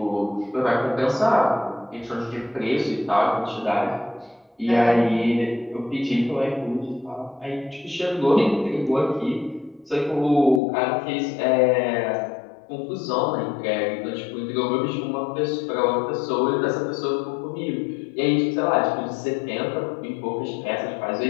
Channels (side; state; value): right; drops out; at 10.6 s